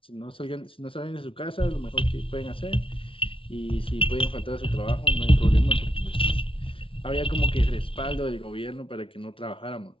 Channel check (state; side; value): late; right; 0.26 ms